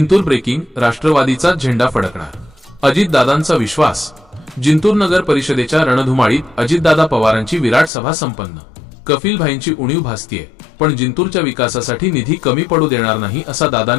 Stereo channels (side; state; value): right; drops out; at 7.9 s